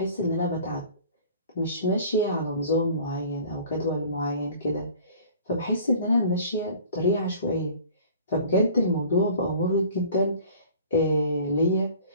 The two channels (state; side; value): inverted; both; correlation -0.47